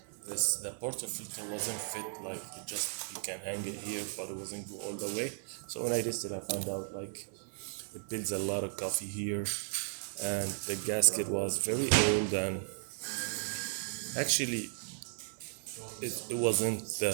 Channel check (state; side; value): silent; left; digital silence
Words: portafilter wasn't fit, like you can hang it here, but it wasn't go all the way. So when I tested, I found out like it builds a lot of coffee here, and the gasket was very old, and actually it wasn't